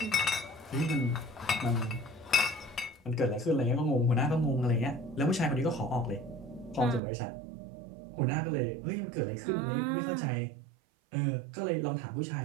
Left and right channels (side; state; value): left; drops out; at 7.0 s